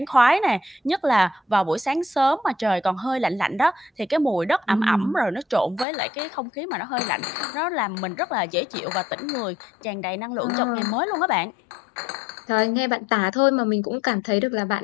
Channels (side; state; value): right; drops out; at 5.9 s